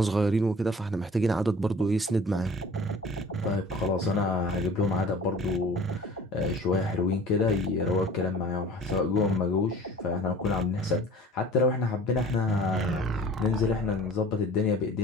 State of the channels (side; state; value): both; normal; correlation 0.45